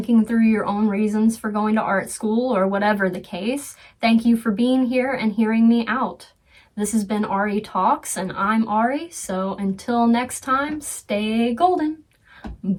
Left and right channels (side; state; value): both; identical; correlation 1.00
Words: through your own reasons for going to art school or whatever the case. Thank you for being here and hearing me out. This has been Ari Talks, and I'm Ari, so until next time, stay golden.